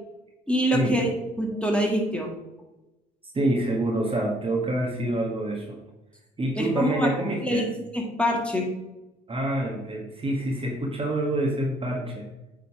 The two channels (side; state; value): both; normal; correlation 0.67